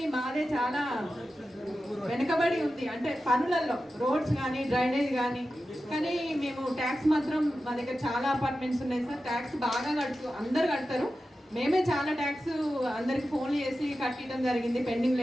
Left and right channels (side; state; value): both; normal; correlation 0.93